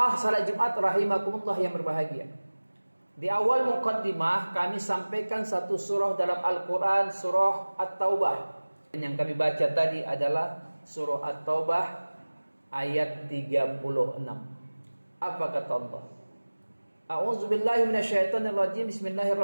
salat Jumat rahimakumullah yang berbahagia. Di awal muqaddimah kami sampaikan satu surah dalam Al-Quran, surah At-Taubah. Yang kami baca tadi adalah surah At-Taubah ayat 36. Apa kata Allah? A'udzubillahi minasyaitonirrajim.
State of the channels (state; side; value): inverted; both; correlation -1.00